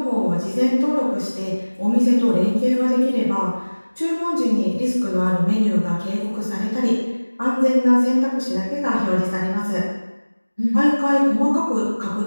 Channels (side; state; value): both; inverted; correlation -1.00